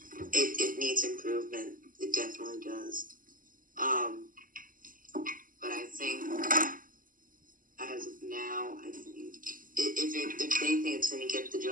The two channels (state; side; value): late; left; 0.40 ms